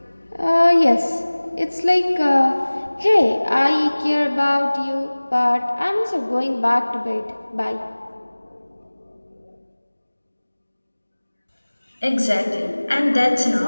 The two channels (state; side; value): inverted; both; correlation -1.00